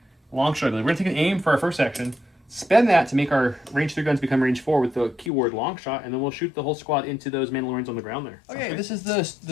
long shot. We're going to take an aim for our first action. Spend that to make our range 3 guns become range 4 with the keyword long shot, and then we'll shoot the whole squad into those Mandalorians on the ground there. Okay, this is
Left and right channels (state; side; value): drops out; right; at 5.3 s